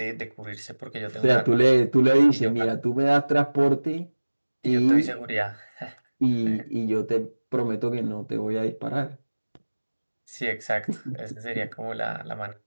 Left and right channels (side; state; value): both; inverted; correlation -1.00